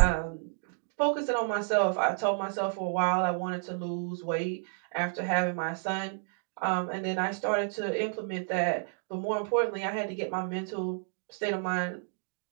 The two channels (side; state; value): left; silent; 57 dB below the other